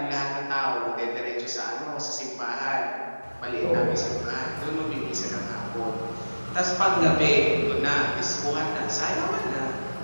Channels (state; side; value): inverted; both; correlation -1.00